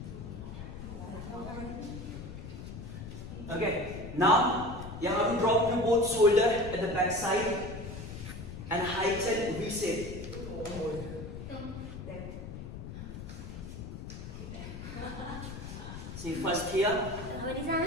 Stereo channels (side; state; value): left; noise; rumble, 9 dB below the sound